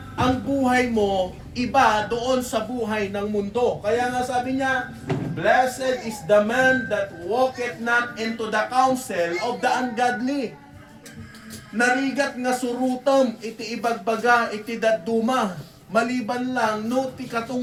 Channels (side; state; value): both; identical; correlation 1.00